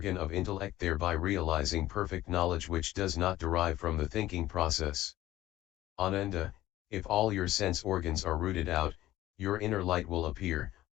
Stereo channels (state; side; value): quieter; right; 15.2 dB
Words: of intellect, thereby realizing perfect knowledge which does not derive from the thinking process. Ananda, if all your sense organs are rooted out, your inner light will appear.